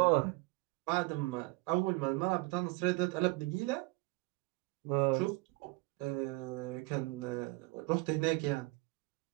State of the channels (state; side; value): quieter; left; 24.5 dB